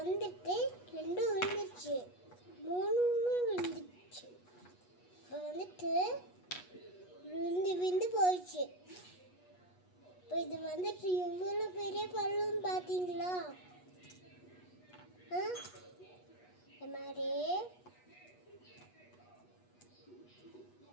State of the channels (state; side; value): late; right; 8.2 ms